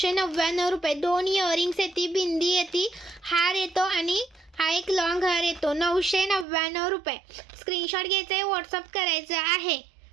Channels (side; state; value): left; drops out; at 6.5 s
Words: रुपये. 2 इयरिंग्स येते, बिंदी येते, हार येतो आणि हा एक लॉंग हार येतो. 999 रुपये. स्क्रीनशॉट घ्यायचा आहे, व्हॉट्सअप करायचं आहे.